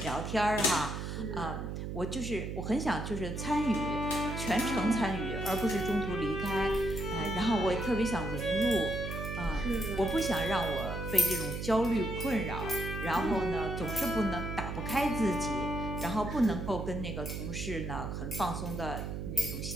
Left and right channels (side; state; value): right; noise; hum, 5 dB below the sound